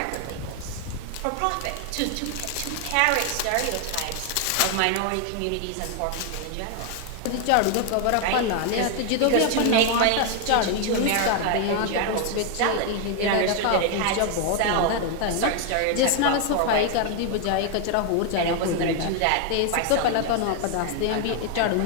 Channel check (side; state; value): both; different; correlation 0.00